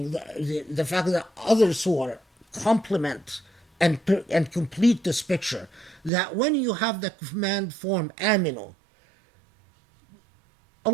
the fact that other surah complement and complete this picture, that when you have the command form aminu,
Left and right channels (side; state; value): left; drops out; at 6.1 s